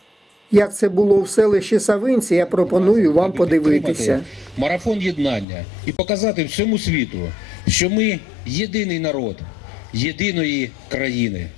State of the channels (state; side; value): drops out; right; at 5.5 s